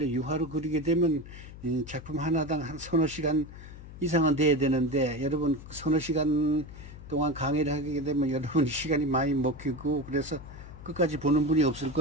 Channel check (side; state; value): left; noise; hum, 15 dB below the sound